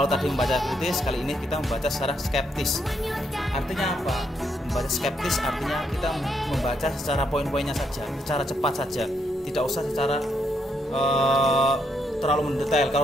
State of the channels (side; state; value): both; normal; correlation 0.76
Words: tadi membaca kritis, kali ini kita membaca secara skeptis. Artinya apa? Membaca skeptis artinya kita membaca secara poin-poinnya saja, secara cepat saja, tidak usah secara terlalu mendetail.